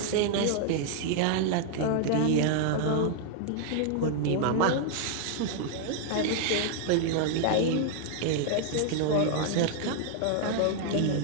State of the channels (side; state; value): both; different; correlation 0.00